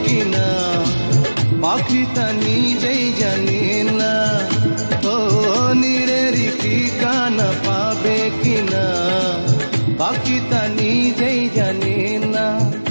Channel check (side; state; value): both; inverted; correlation -1.00